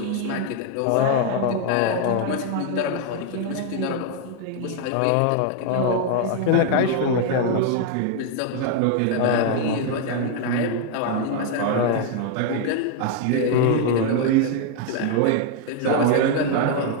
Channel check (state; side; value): different; both; correlation 0.00